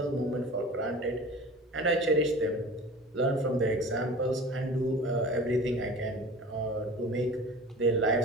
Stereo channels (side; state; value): both; normal; correlation 0.39